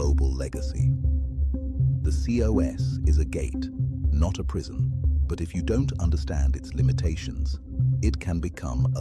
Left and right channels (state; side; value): identical; both; correlation 1.00